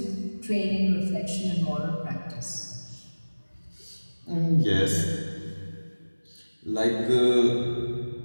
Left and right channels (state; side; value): inverted; both; correlation -1.00